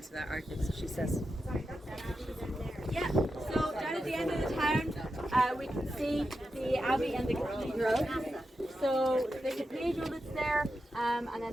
that argument, so she says. Yeah, so down at the end of the town, we can see the Abbey and the Cathedral. So the Cathedral that's there, and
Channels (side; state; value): both; normal; correlation 0.89